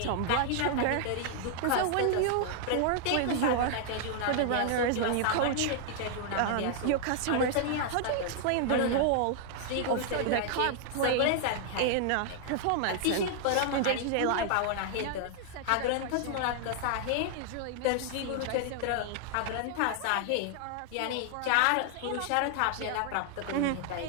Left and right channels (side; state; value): both; different; correlation 0.00